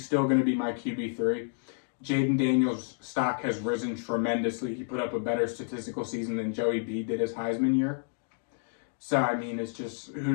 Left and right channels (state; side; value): silent; right; digital silence